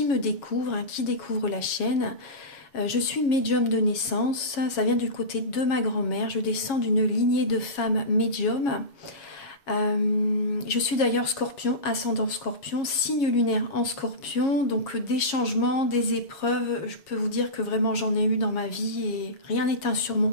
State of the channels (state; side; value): late; right; 7.3 ms